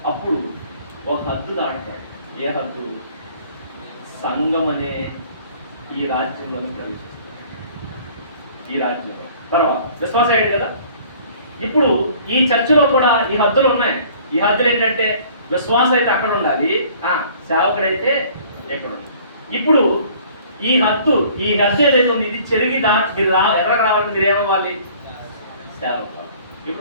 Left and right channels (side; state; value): both; inverted; correlation -0.53